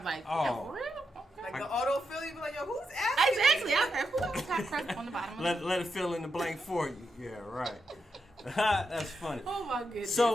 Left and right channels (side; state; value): both; normal; correlation 0.84